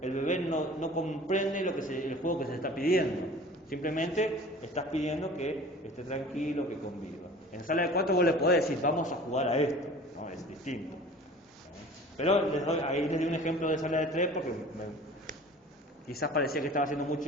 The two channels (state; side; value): normal; both; correlation 0.44